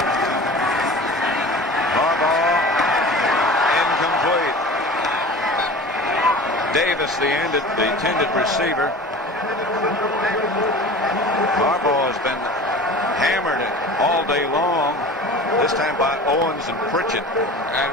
Harbaugh incomplete. Davis, the intended receiver. Harbaugh has been hammered all day long, this time by Owens and Pritchett. And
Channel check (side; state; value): both; normal; correlation 0.38